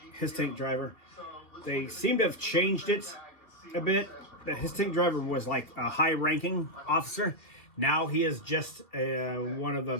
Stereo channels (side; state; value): right; late; 2.3 ms